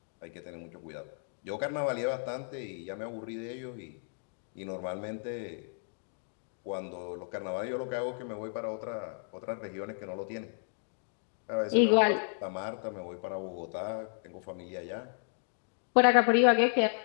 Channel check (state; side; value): silent; right; digital silence